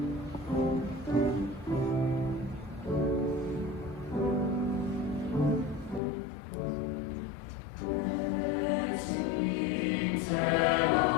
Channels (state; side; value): drops out; right; at 6.0 s